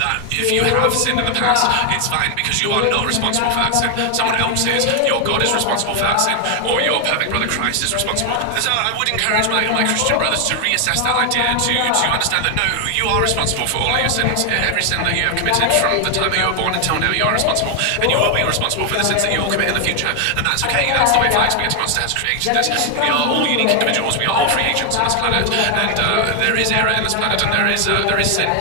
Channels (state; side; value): different; both; correlation 0.00